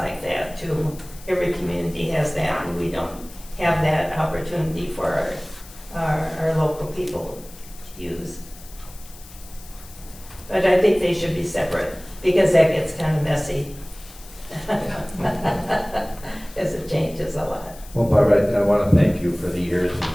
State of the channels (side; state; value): left; noise; hiss, 20 dB below the sound